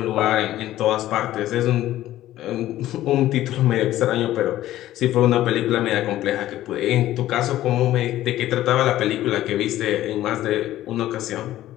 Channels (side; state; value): right; quieter; 14.2 dB